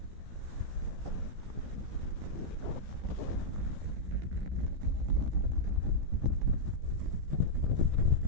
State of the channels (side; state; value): left; late; 15 ms